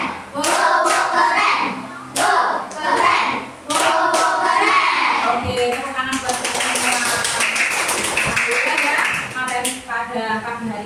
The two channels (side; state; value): both; identical; correlation 1.00